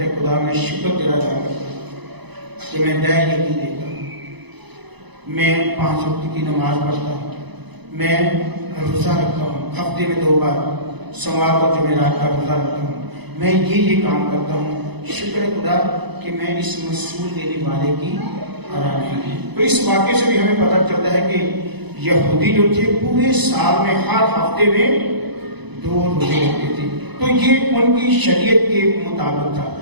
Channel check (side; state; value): left; late; 0.99 ms